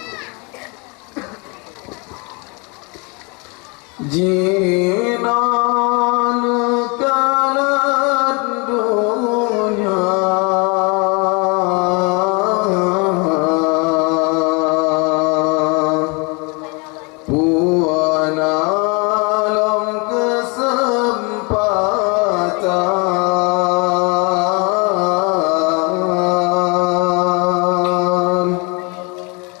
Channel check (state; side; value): quieter; right; 30.7 dB